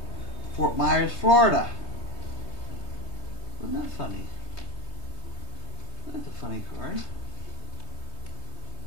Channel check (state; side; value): late; right; 3.3 ms